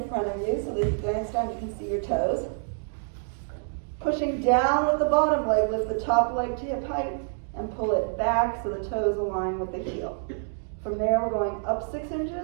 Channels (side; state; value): left; silent; digital silence